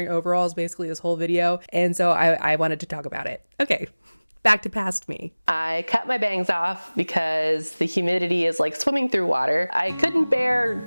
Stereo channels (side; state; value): both; inverted; correlation -1.00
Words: overalls basically this whole video, and so I wanted to talk about it. Okay, back to past me. I cut my bangs off because the humidity is like swimming through water. I couldn't